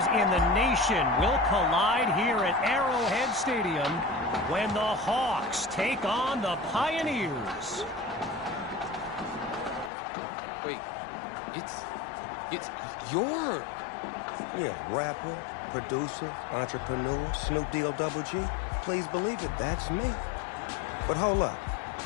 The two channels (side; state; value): right; drops out; at 9.9 s